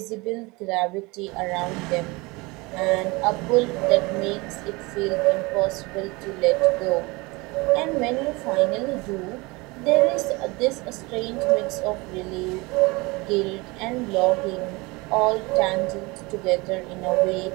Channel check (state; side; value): quieter; left; 24.7 dB